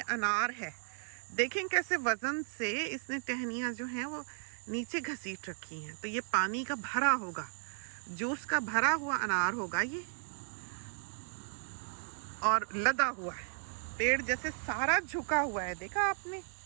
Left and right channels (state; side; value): silent; left; 54 dB below the other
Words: अनार है। देखें कैसे वजन से इसने टहनियाँ जो हैं वो नीचे घसीट रखी हैं। तो ये पानी का भरा होगा, जूस का भरा हुआ अनार होगा ये, और लदा हुआ है, पेड़ जैसे सारा झुका हुआ है। देखा आपने